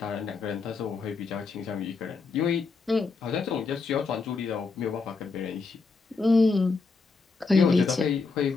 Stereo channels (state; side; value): quieter; right; 4.4 dB